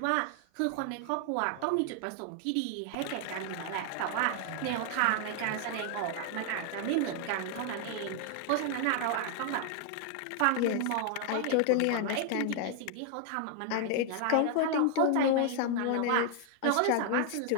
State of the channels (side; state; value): both; different; correlation 0.00